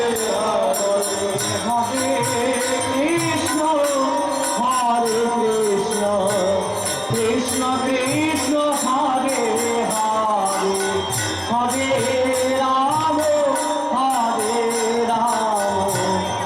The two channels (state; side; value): identical; both; correlation 1.00